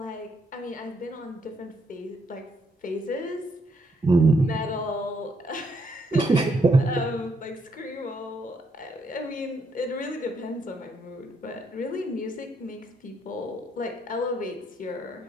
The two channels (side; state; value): both; normal; correlation 0.74